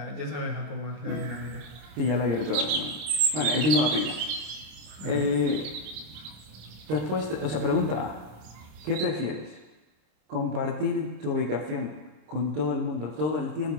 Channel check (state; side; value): late; left; 27 ms